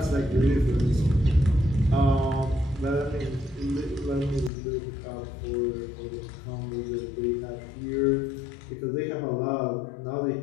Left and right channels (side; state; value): right; drops out; at 4.5 s